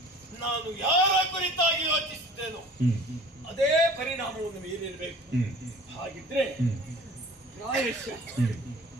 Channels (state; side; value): normal; both; correlation 0.45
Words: ನಾನು ಯಾರ ಕುರಿತಾಗಿ ಯೋಚಿಸಿದ್ದೇನೋ ಅದೇ ಪರಿಣಾಮವನ್ನು ಮೀರಿರಬೇಕು. ಹಾಗಿದ್ರೆ ಪ್ರಾಯಶಃ